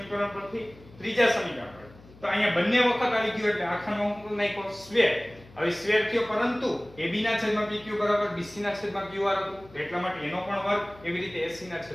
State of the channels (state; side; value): noise; left; hum, 23 dB below the sound